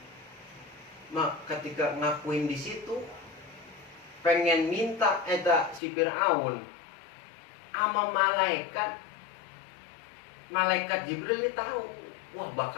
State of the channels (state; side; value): drops out; right; at 5.8 s